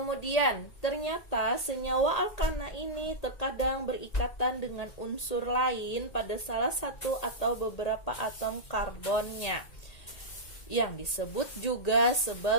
ternyata senyawa alkana ini terkadang berikatan dengan unsur lain pada salah satu atau beberapa atom karbonnya, yang disebut juga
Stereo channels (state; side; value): late; right; 1.8 ms